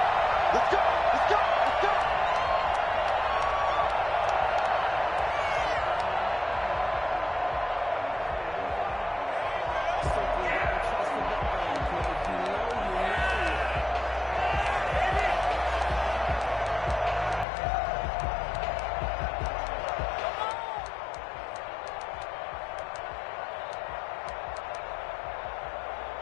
Let's go! Let's go! Let's go!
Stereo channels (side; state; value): right; drops out; at 17.4 s